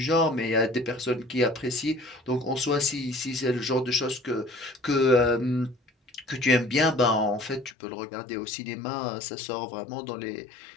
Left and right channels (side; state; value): right; drops out; at 7.8 s